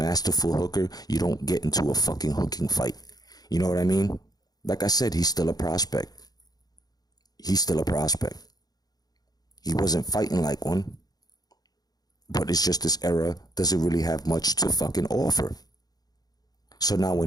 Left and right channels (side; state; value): right; late; 0.19 ms